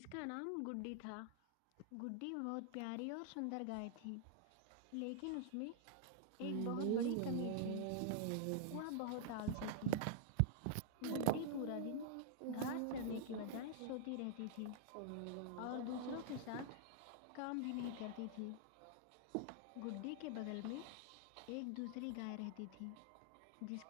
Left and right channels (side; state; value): both; different; correlation -0.01